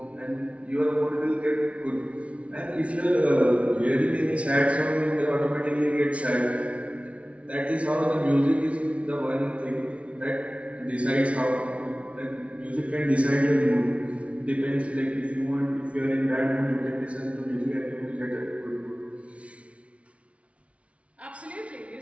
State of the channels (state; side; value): late; left; 0.063 ms